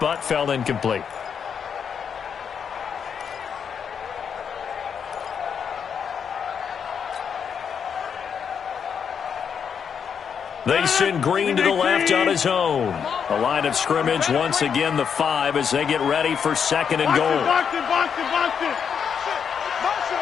fell incomplete. They send Green to the left on his own. The line of scrimmage, once again, the 5 as they get ready for 2nd and goal.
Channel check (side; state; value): right; quieter; 7.1 dB